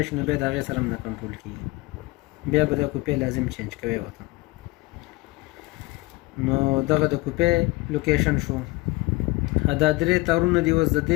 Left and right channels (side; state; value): right; quieter; 22.1 dB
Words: نو بیا د هغې سره هم نه کنټرول کېږي، بیا به دا کوپې لازم چینج کوي ورته. نو دغه د کوپې لوکیشن شو. دا درې تارونه دي، اوس د